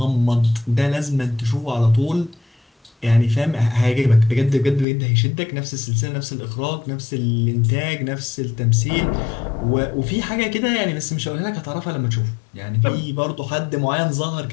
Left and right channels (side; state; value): right; drops out; at 4.9 s